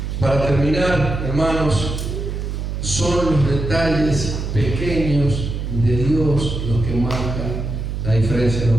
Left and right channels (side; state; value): right; noise; hum, 4 dB below the sound